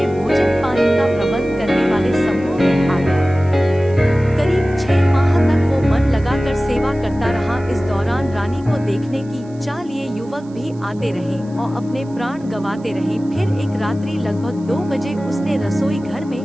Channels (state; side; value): noise; right; hiss, 29 dB below the sound